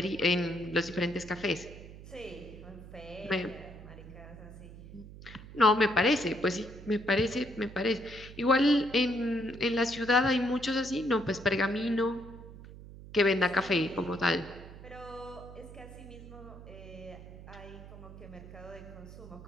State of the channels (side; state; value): right; noise; hum, 15 dB below the sound